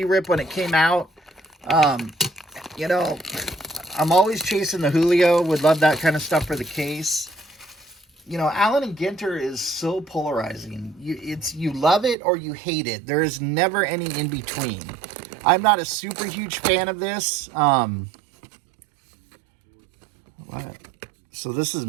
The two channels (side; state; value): left; drops out; at 12.2 s